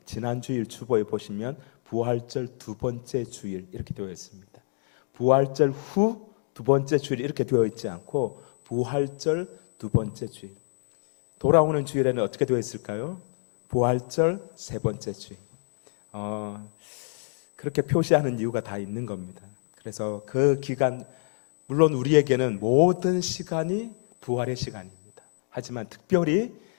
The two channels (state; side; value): silent; right; digital silence